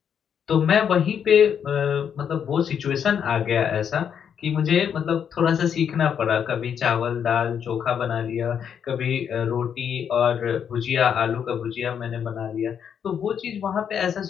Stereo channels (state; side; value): quieter; right; 8.0 dB